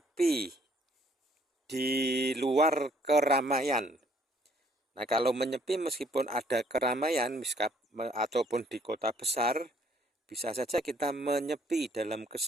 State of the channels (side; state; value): both; normal; correlation 0.63